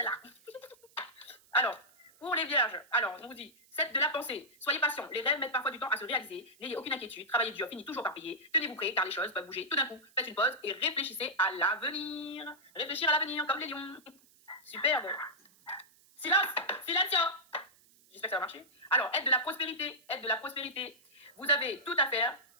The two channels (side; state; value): right; noise; hiss, 29 dB below the sound